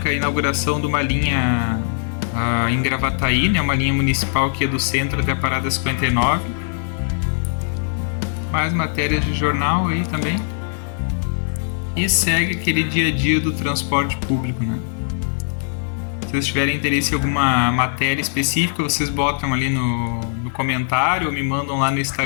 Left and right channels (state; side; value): silent; right; 65 dB below the other